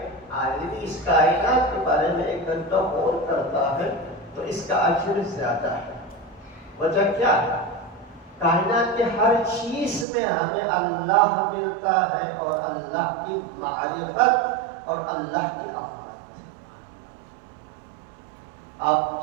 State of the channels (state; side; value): drops out; left; at 10.1 s